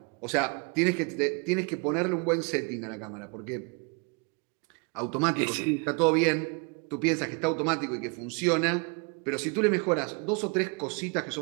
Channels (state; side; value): quieter; left; 33.2 dB